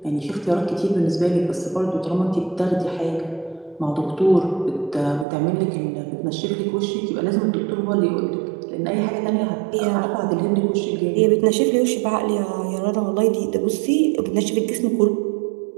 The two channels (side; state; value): left; drops out; at 5.2 s